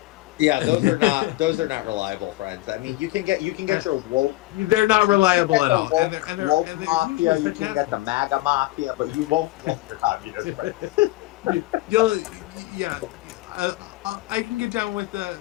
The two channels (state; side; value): quieter; right; 19.0 dB